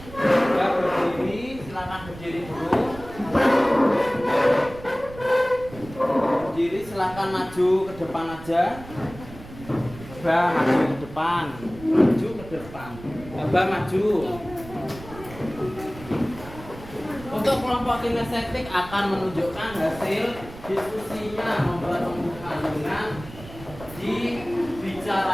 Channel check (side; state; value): right; noise; rumble, 16 dB below the sound